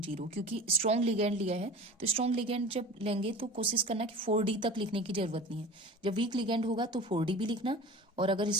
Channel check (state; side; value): normal; both; correlation 0.38